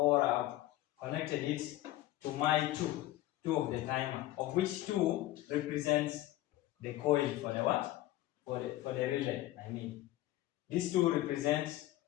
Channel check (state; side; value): quieter; right; 15.7 dB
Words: I've connected it to my two of the timer, of which 2 represents the coil for the what? For the relay. I mean, these 2 represents